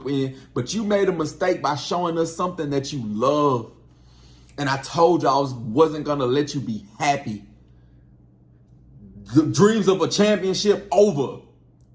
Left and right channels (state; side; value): identical; both; correlation 1.00